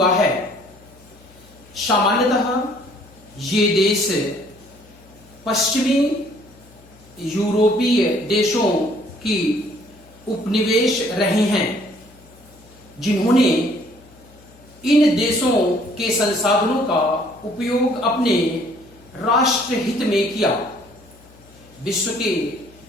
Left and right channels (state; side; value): noise; left; hum, 26 dB below the sound